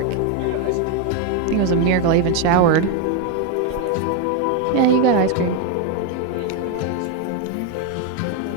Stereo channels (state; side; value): different; both; correlation 0.01